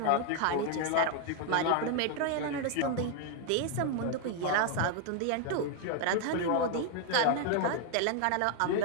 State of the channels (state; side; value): different; both; correlation 0.01